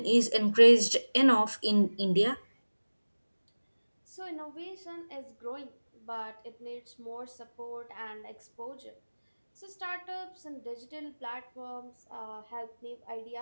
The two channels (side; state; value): both; inverted; correlation -1.00